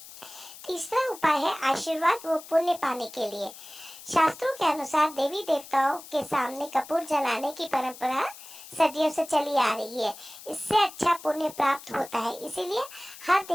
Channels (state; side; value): noise; left; hiss, 16 dB below the sound